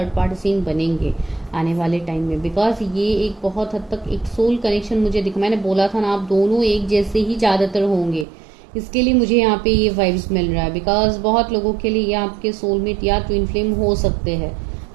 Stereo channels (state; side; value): drops out; left; at 8.2 s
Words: पार्टी सीन बनेंगे आने वाले टाइम में, बिकॉज ये एक बहुत हद तक एक सोल कनेक्शन मुझे दिखा। मैंने बोला था ना, आप दोनों एक जैसे ही ज़्यादातर होंगे, इसके लिए मुझे यहाँ पे ये वाइब्स मिल रहा है। बिकॉज बहुत लोगों के लिए ये आपके सोलमेट या ट्विन फ्लेम हो सकते हैं,